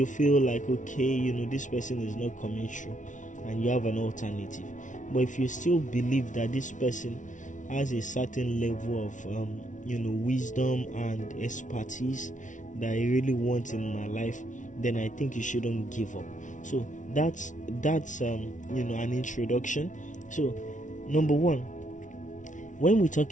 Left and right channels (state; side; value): late; right; 0.37 ms